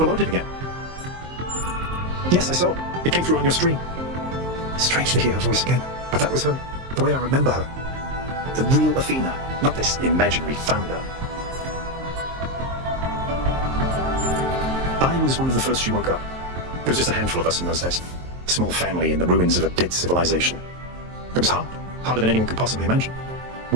again. Yes, I saw. It came through on your stream. Strange to hear her voice again, but that was her. The way I remember her. The real Athena, not this imaginary founder. I was one of the first she woke up. There was just a handful of us in those days. A small family in the ruins of a dead civilization. It was hard. Harder than anyone could possibly imagine.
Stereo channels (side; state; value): left; late; 23 ms